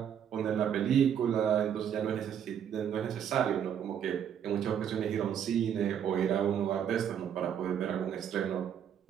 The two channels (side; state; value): left; quieter; 8.8 dB